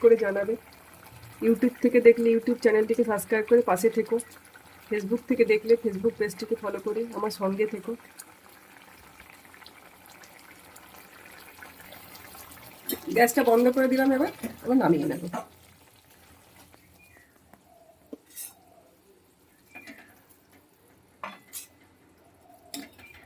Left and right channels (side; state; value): both; identical; correlation 1.00